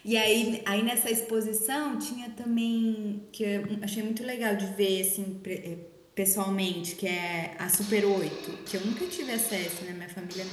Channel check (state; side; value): identical; both; correlation 1.00